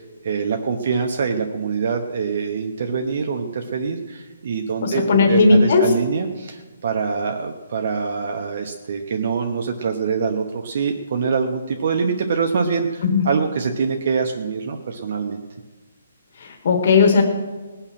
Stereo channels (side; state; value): both; inverted; correlation -0.66